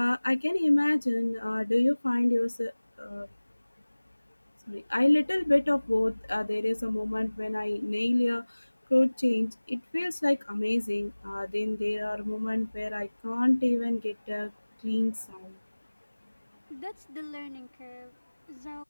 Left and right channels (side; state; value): both; inverted; correlation -1.00